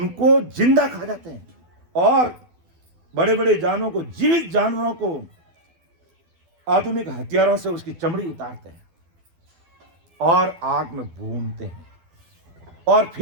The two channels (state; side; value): late; left; 12 ms